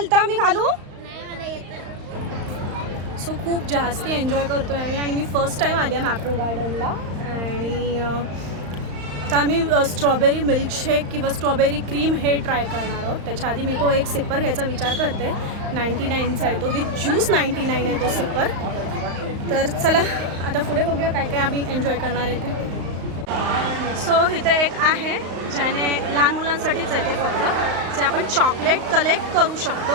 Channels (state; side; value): late; left; 35 ms